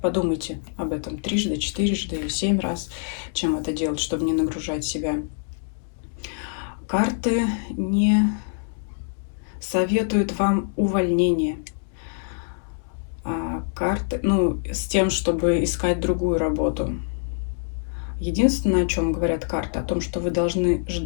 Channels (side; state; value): right; silent; digital silence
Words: подумайте об этом трижды, четырежды, 7 раз, чем это делать, чтобы не нагружать себя. Карты не советуют вам увольнение. Карты, с тем, чтобы искать другую работу. Единственное, о чем говорят карты, о том, что вы должны